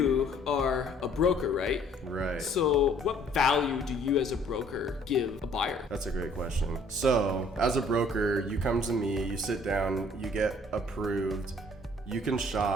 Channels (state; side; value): normal; both; correlation 0.58